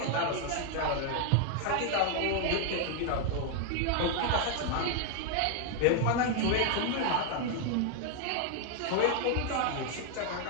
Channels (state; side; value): different; both; correlation 0.00